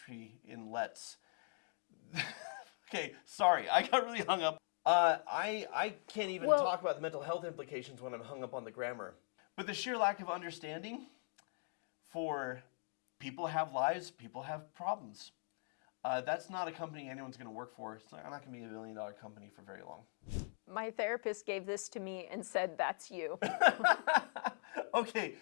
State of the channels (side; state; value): right; silent; 51 dB below the other